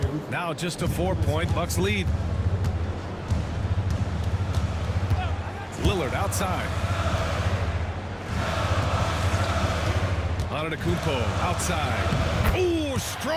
Now just a 4-point Bucks lead. Lillard outside. Antetokounmpo outside. Ooh,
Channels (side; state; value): both; identical; correlation 1.00